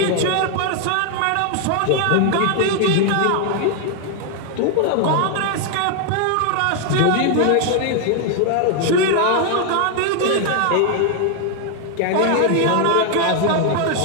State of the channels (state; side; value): different; both; correlation 0.00